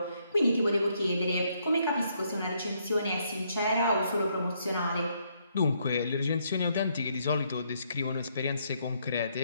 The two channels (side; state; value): both; inverted; correlation -0.73